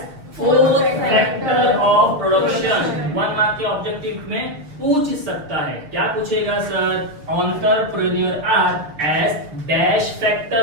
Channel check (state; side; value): late; left; 6.8 ms